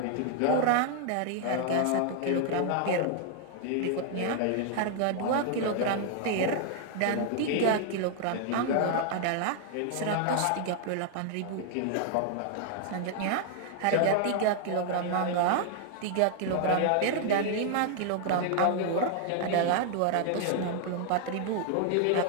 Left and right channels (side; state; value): both; different; correlation 0.00